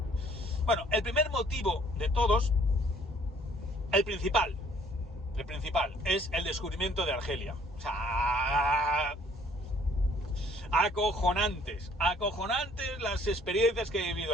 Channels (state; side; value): normal; both; correlation 0.59